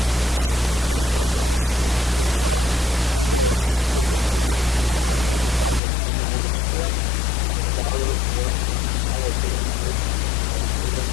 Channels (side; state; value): right; drops out; at 5.8 s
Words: don't think anybody else is, they've already did their term. Name of the Father, Son, and Holy Spirit. Amen. Our Father, who art in heaven, hallowed be thy name. Thy kingdom